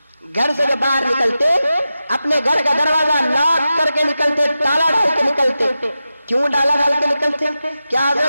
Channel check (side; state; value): both; inverted; correlation -0.92